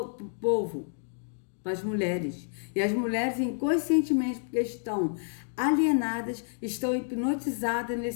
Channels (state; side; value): silent; right; digital silence